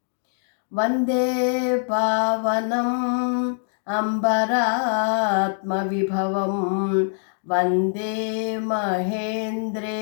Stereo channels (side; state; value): right; silent; digital silence